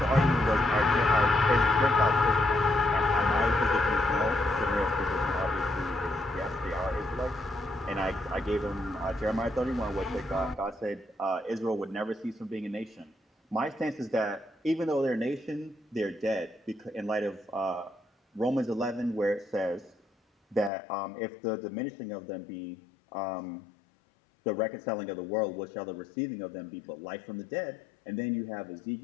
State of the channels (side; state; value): right; drops out; at 20.7 s